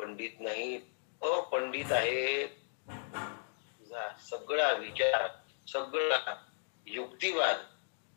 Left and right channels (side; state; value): right; silent; digital silence